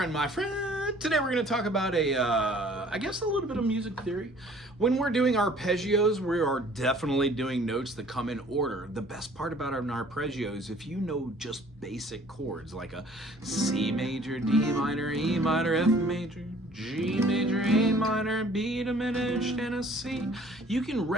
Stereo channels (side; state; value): both; normal; correlation 0.54